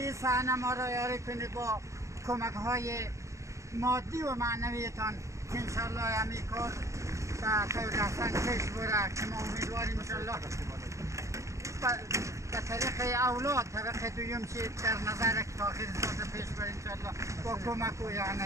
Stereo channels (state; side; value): late; left; 0.15 ms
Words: صحنه ما را یاری کنید با کمک های مادی و معنویتان که انشاءالله همین کار به طور احسن پیش بره که ما امیدواریم انشاءالله به طریق اولاد طبق دویم چی در نظر که تاخیر ساز پیش بره انشاءالله با کمک و